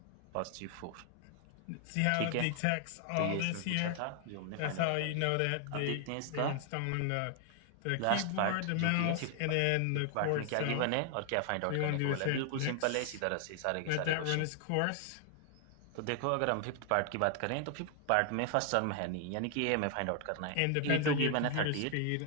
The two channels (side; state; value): both; different; correlation 0.00